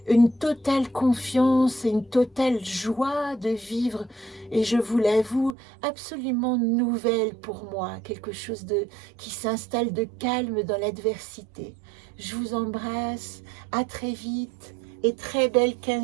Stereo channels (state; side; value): drops out; left; at 5.6 s